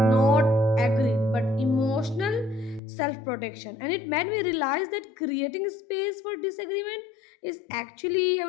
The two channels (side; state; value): right; drops out; at 2.8 s